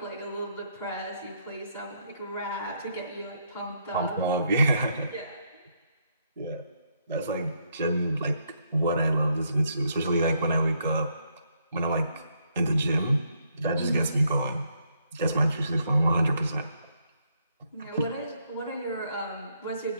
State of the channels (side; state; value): both; inverted; correlation -0.74